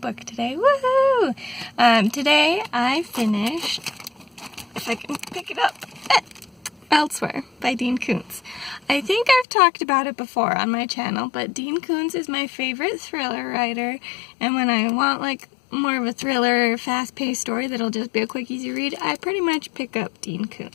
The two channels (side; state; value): right; drops out; at 9.5 s